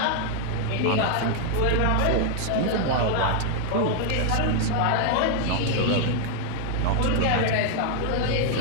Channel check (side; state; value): both; different; correlation 0.00